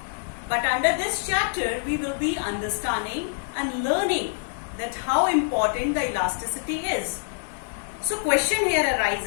But under this chapter, we will be understanding and learning that how important the elasticity is. So question here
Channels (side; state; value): right; silent; 61 dB below the other